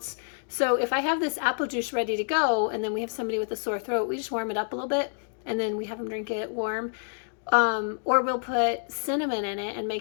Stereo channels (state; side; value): silent; right; digital silence